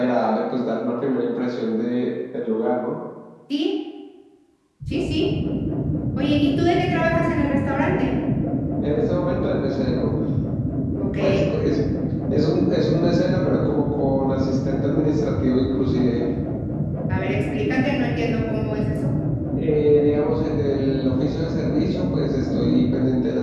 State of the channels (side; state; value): both; identical; correlation 1.00